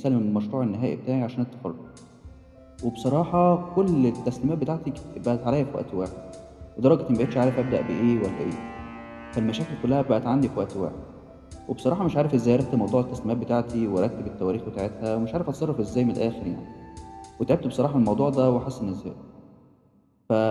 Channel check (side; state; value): both; identical; correlation 1.00